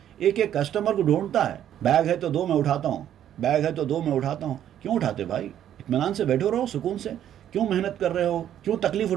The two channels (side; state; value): left; quieter; 10.7 dB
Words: ایک ایک کسٹمر کو ڈھونڈتا ہے، بیگ ہے تو دو میں اٹھاتا ہوں، کیوں اٹھاتے بھائی؟ اطمینان سے بیٹھو رہو، سکون سے، کیوں محنت کر رہے ہو، کیوں تکلیف